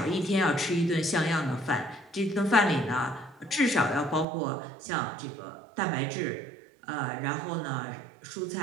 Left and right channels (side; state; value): left; drops out; at 4.2 s